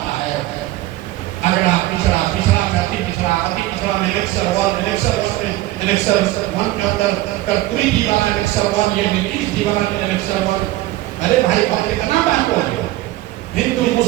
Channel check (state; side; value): quieter; left; 16.7 dB